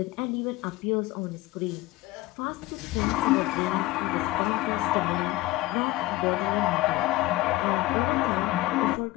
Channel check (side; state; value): right; quieter; 17.9 dB